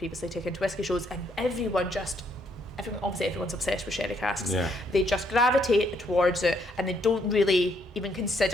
taken to whiskey shows, and everyone's obsessed with sherry casks. They just gravitate towards it, and they don't really even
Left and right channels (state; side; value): normal; both; correlation 0.71